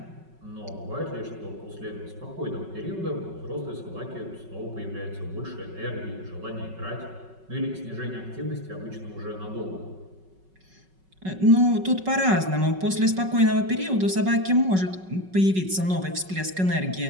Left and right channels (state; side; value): late; left; 5.3 ms